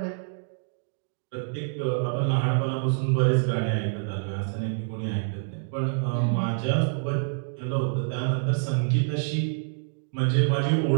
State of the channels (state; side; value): silent; left; digital silence